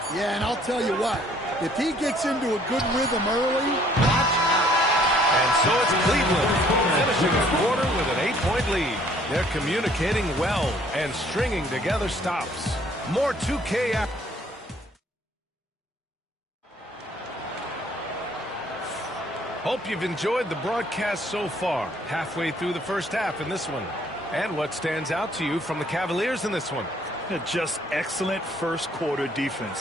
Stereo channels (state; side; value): normal; both; correlation 0.60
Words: Yeah, and I'll tell you what, if he gets into a good rhythm early, watch out. And so it's Cleveland finishing the quarter with an 8-point lead. They're communicating well and stringing together stops. More 2K action. Hope you've enjoyed the broadcast so far. Halfway through the first half in this one. And what stands out to you from the Cavaliers in this one? Just excellent first quarter